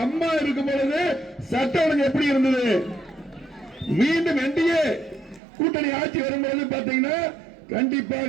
அம்மா இருக்கும் பொழுது சட்ட ஒழுங்கு எப்படி இருந்தது? மீண்டும் என்டிஏ கூட்டணி ஆட்சி வரும்பொழுது பாத்தீங்கன்னா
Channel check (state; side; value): drops out; left; at 5.4 s